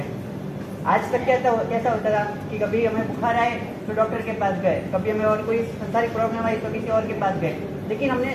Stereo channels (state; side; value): identical; both; correlation 1.00